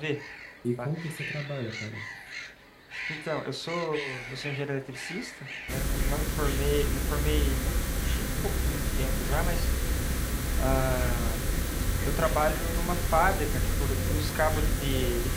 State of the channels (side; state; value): both; identical; correlation 1.00